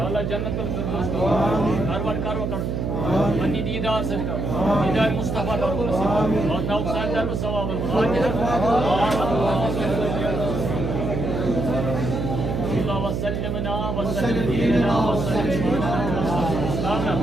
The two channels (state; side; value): noise; right; hum, 2 dB below the sound